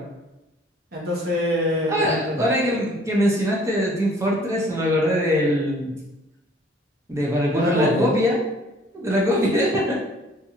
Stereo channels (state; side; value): normal; both; correlation 0.56